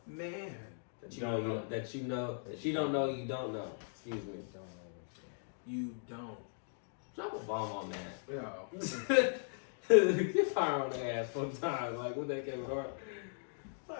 Man, That you don't know that you don't know you don't know. Excuse me. you don't. Drop a bomb on that. Yo. Get fire on the ass one time. Like what that Kevin Hart.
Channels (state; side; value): silent; right; digital silence